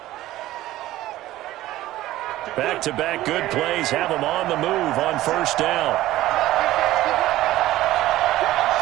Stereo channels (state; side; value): quieter; left; 15.5 dB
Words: Back-to-back good plays have them on the move on first down.